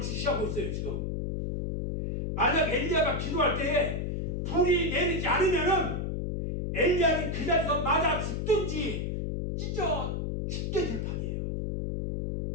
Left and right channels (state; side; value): noise; left; hum, 2 dB below the sound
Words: 주시하고 있어요. 지금 만약 엘리야가 기도할 때에 불이 내리지 않으면은 엘리야는 그 자리에서 맞아 죽든지 찢어 죽게 될 판이에요.